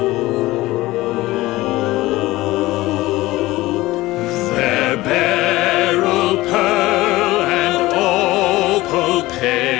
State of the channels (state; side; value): quieter; right; 18.5 dB